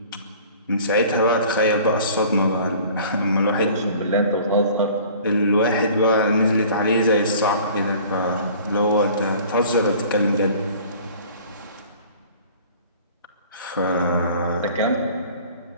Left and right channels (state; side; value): inverted; both; correlation -0.47